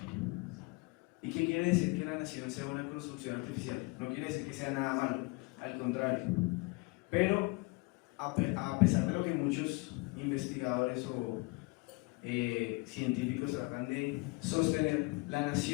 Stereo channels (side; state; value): right; quieter; 26.6 dB